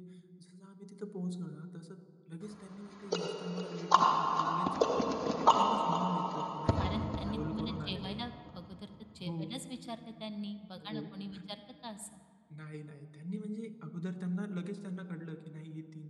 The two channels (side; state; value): both; identical; correlation 1.00